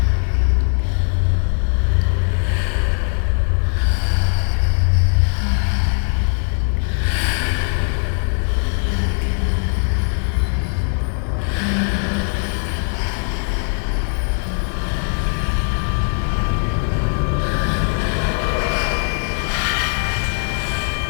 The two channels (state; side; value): silent; right; 57 dB below the other